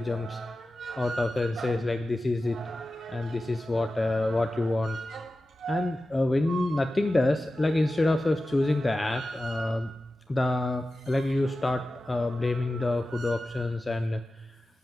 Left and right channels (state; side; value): normal; both; correlation 0.94